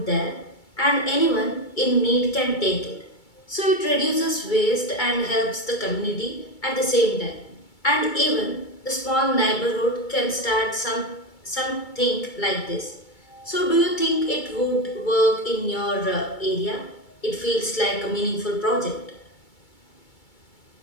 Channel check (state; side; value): late; right; 2.3 ms